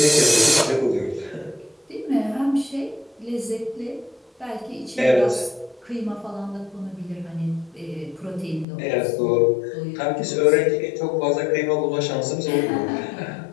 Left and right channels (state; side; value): drops out; right; at 8.7 s